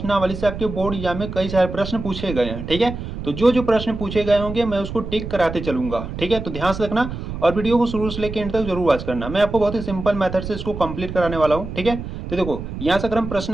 से आपके बोर्ड एग्जाम में कई सारे प्रश्न पूछे गए हैं। ठीक है, तो जो जो प्रश्न पूछे गए होंगे मैं उसको टिक कराते चलूंगा। ठीक है, तो ध्यान से रखना और वीडियो को शुरू से लेकर एंड तक जरूर वॉच करना। मैं आपको बहुत ही सिंपल मेथड से इसको कंप्लीट कराने वाला हूँ। ठीक है, तो देखो यहाँ से अगर हम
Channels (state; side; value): noise; right; rumble, 8 dB below the sound